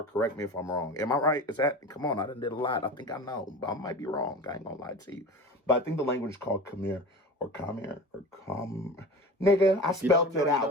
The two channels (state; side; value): normal; both; correlation 0.33